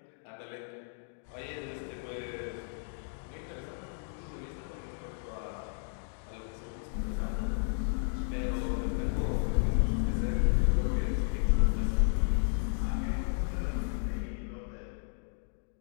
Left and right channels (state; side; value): silent; right; digital silence